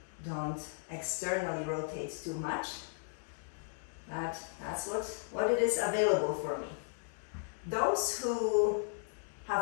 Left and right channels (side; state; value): right; silent; digital silence